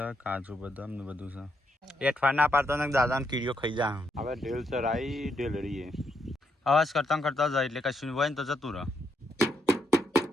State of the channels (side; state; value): both; normal; correlation 0.78